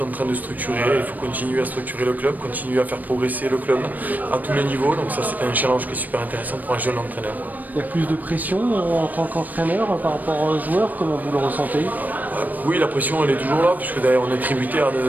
en train de structurer, il faut continuer à structurer le club, continuer à faire progresser le club à tous les niveaux. Donc ça c'est un challenge qui est super intéressant pour un jeune entraîneur. Il y a plus de pression en tant qu'entraîneur par rapport aux joueurs, comment vous le ressentez? Oui, la pression elle est toujours là, puisque d'ailleurs on est tributaire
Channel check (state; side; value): late; left; 0.083 ms